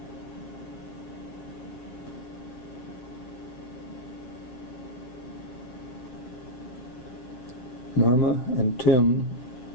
Norma and Tim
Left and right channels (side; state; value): right; late; 7.6 ms